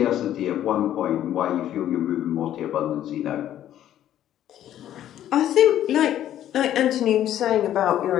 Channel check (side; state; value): right; quieter; 11.7 dB